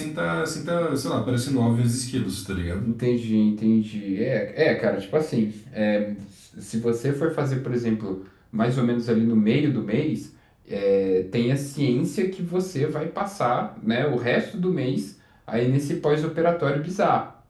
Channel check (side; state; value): both; identical; correlation 1.00